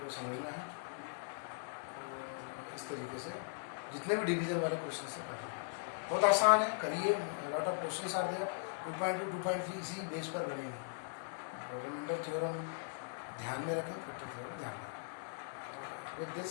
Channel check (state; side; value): silent; right; digital silence